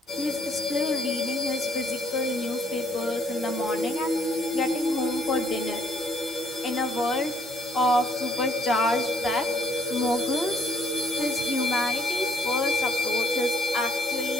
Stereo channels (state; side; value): normal; both; correlation 0.66